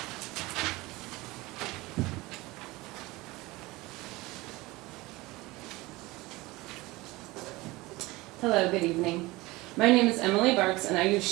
Hello, good evening. My name is Emily Bartz and I use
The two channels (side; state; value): left; quieter; 21.1 dB